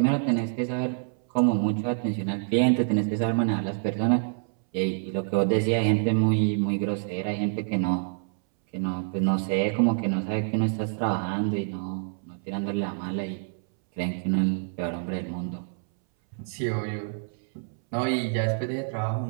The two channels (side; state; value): left; silent; 60 dB below the other